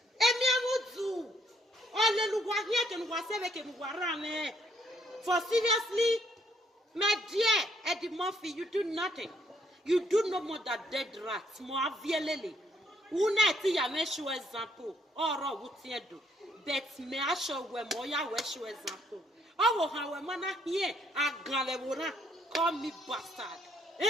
Emi amudu. Olelu wa here ken wa sebe ken wa rame. For seriously, my dear Eddie Murphy, you do nothing. You do no more than dead rats. Mo avielele. Una ti ya me show example. Oro wuti edo. Bet me asho we mo ya we show example. Oh, how a man here, a galevona, call me bastard.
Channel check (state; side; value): normal; both; correlation 0.69